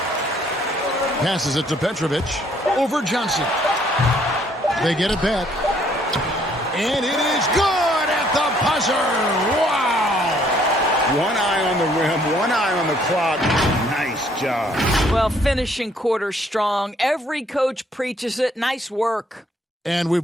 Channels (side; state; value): both; normal; correlation 0.65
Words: Passes it to Petrovic. Over Johnson. They get it back. And it is good at the buzzer. Wow! One eye on the rim, one eye on the clock. Nice job. Well, finishing quarter strong. Every coach preaches it. Nice work. And we've